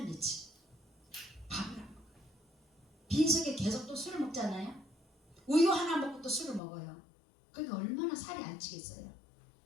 며칠 밥을 안 먹어요. 빈속에 계속 또 술을 먹잖아요. 우유 하나 먹고 또 술을 먹어요. 그러니까 얼마나 살이 안 찌겠어요.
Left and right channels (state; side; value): drops out; right; at 6.6 s